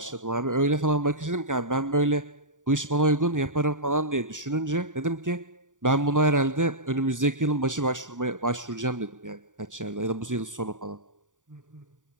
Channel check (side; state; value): left; late; 0.87 ms